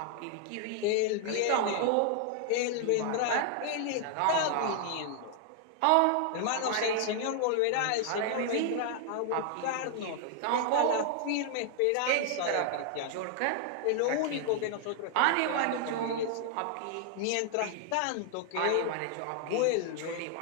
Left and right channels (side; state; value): both; different; correlation 0.00